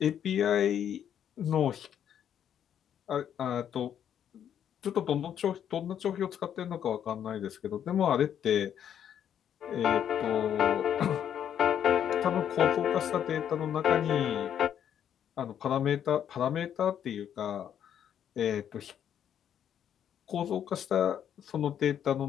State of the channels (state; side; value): quieter; right; 9.4 dB